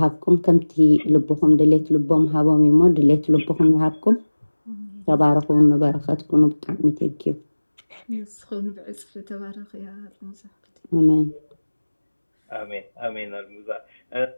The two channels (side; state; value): both; inverted; correlation -1.00